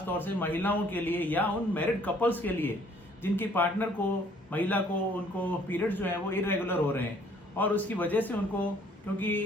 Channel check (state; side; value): normal; both; correlation 0.60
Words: तौर से महिलाओं के लिए या उन मैरिड कपल्स के लिए जिनकी पार्टनर को, महिला को, उनको पीरियड्स जो है वो इरेगुलर हो रहे हैं और उसकी वजह से उनको,